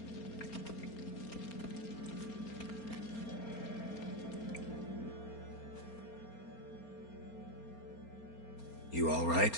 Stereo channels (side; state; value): right; late; 4.3 ms